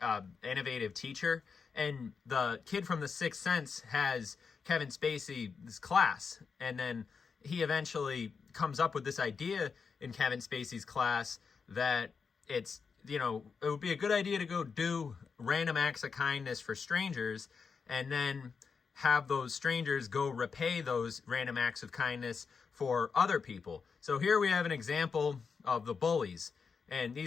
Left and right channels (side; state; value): right; quieter; 5.5 dB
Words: innovative teacher. And the kid from The Sixth Sense has Kevin Spacey's class, and then he eventually comes up with this idea in Kevin Spacey's class that it would be a good idea to go do random acts of kindness for strangers, and then have those strangers go repay those random acts of kindness for other people. So here we have an example of the bullies. And